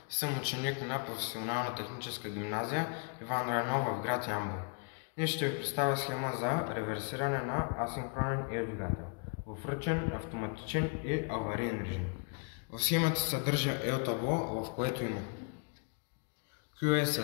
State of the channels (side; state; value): right; quieter; 38.3 dB